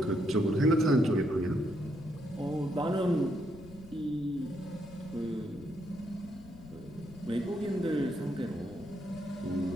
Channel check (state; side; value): noise; left; rumble, 18 dB below the sound